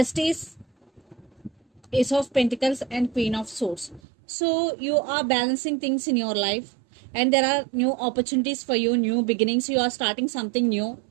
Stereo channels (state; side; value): drops out; left; at 4.0 s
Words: Ace of Pentacles, and Queen of Swords. So you are balancing things in your life and there are new opportunities for you, new beginnings. You are starting something new.